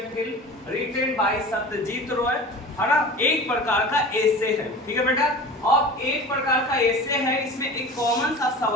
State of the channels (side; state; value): both; normal; correlation 0.37